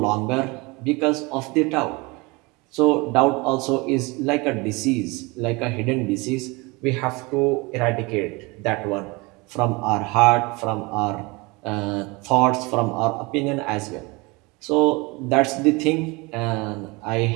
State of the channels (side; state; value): left; quieter; 25.7 dB